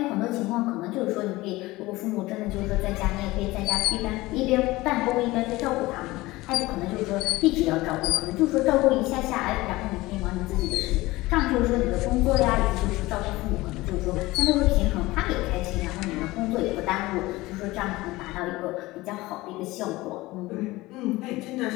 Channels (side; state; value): right; quieter; 19.6 dB